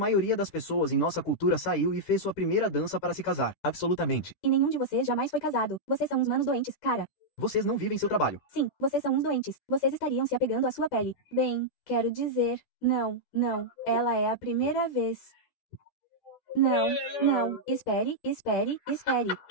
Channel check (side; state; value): right; late; 13 ms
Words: das pessoas em nossa cultura saiu e fez sua primeira dança para se casar. Absolutamente. E nenhum de vocês jamais foi casado. Vocês são uns manos doentes, cara. Vocês não vivem seu trabalho. Sim, vocês são uns doentes. Vocês estariam se apegando à sua pele. Bem, quero dizer, não, ela é a primeira vez. Não, espere.